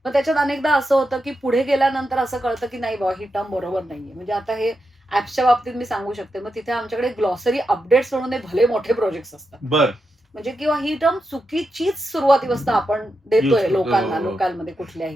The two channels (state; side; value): normal; both; correlation 0.87